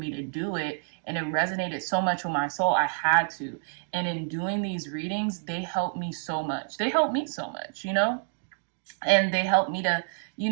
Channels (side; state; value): left; silent; digital silence